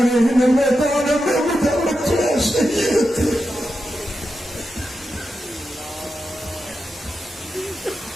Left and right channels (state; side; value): normal; both; correlation 0.89